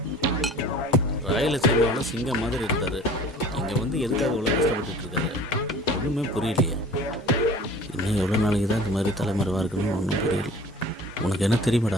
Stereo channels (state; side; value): normal; both; correlation 0.45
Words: ராயலசீமாவோட சிங்கம் மாதிரி இருந்தார். இங்கே வந்து எதுக்காக இவ்வளோ கஷ்டப்பட்டு இருக்காரு ஒன்றுமே புரியலையே. இன்னும் எவ்வளோ நாளைக்கு தான் இந்த மாதிரி தலைமறைவாக இருக்குன்னு ஒன்றும் புரியல. உனக்கு என்ன